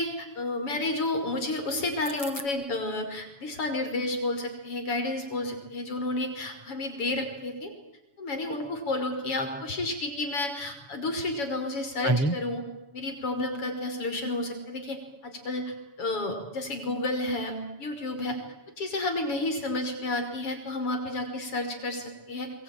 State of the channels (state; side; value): late; right; 7.1 ms